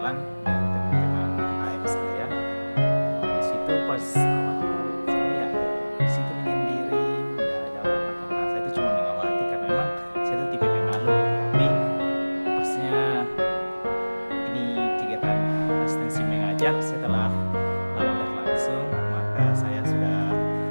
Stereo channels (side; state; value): both; inverted; correlation -1.00